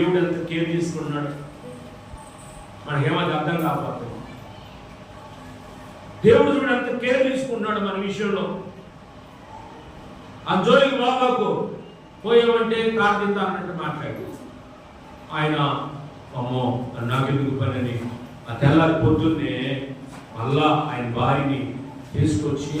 ఎంత కేర్ తీసుకున్నాడు. మనకేమది అర్థం కాకపోతే దేవుడు చూడు ఎంత కేర్ తీసుకున్నాడు మన విషయంలో. ఆ జోలికి బాబాకు పోయామంటే ప్రార్థిత అన్నట్టు మాట్లాడు. ఆయన అమ్మో నాకెందుకు పని అని ఆ తెల్లారి పొద్దున్నే మళ్ళా ఆయన భార్యని తీసుకొచ్చి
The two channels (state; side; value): identical; both; correlation 1.00